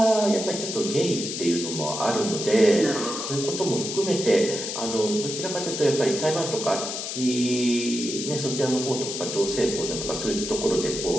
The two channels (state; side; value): noise; left; hiss, 5 dB below the sound